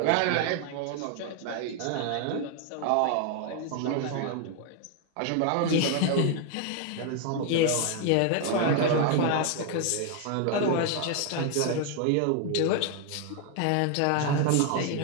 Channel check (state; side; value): different; both; correlation 0.00